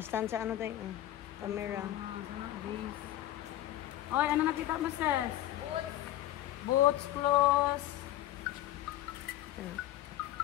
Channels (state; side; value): quieter; right; 13.9 dB